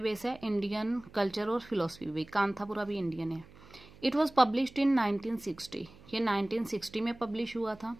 है? इंडियन कल्चर और फिलोसफी भी। कांथापुरा भी इंडियन है। इट वॉज पब्लिश्ड इन 1960, ये 1960 में पब्लिश हुआ था।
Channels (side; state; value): right; noise; hum, 23 dB below the sound